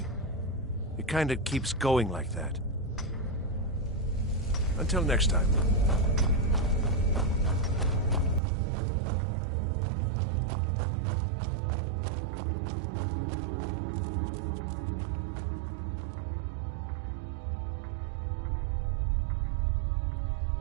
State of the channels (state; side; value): drops out; left; at 8.4 s